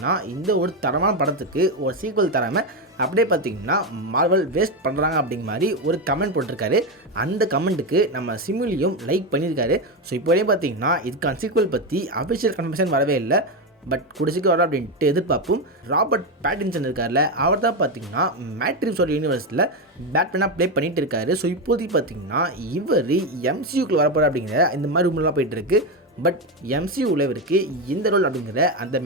இந்த ஒரு தரமான படத்துக்கு ஒரு சீக்வல் தராமல் அப்படியே பார்த்தீங்கன்னா மார்வல் வேஸ்ட் பண்ணுறாங்க அப்படிங்கிற மாதிரி ஒரு கமெண்ட் போட்டிருக்காரு. அந்த கமெண்ட்டுக்கு நம்ம சிமுலியும் லைக் பண்ணியிருக்காரு. ஸோ இப்போதே பார்த்தீங்கன்னா இதுக்கான சீக்வல் பற்றி அஃபிஷியல் கன்ஃபர்மேஷன் வரவே இல்லை. பட் குடிச்சிக்கு வர அப்படின்ட்டு எதிர்பார்ப்போம். ராபர்ட் பேட்டின்சன் இருக்கார்ல, அவர் தான் பார்த்தீங்கன்னா மேட்ரிக்ஸோட யூனிவர்ஸில் பேட்மேனாக ப்ளே பண்ணிகிட்டு இருக்காரு. ஸோ இப்போதைக்கு பார்த்தீங்கன்னா இவர் எம்சியூக்குள்ள வரப்போகிற அப்படிங்கிற இந்த மாதிரி ரூம்லாம் போயிட்டு இருக்கு. பட் எம்சியூவில் இவருக்கு இந்த ரோல் அப்படிங்கிற அந்த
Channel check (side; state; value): both; normal; correlation 0.11